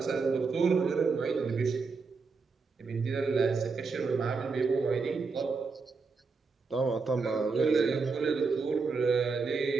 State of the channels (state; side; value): quieter; left; 4.6 dB